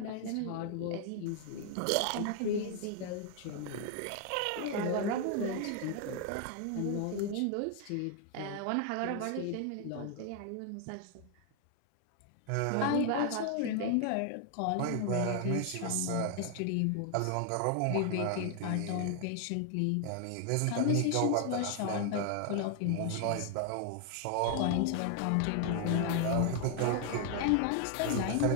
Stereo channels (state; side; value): different; both; correlation 0.00